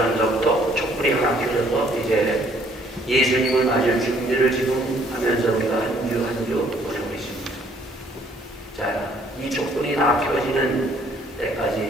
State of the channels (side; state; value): both; normal; correlation 0.62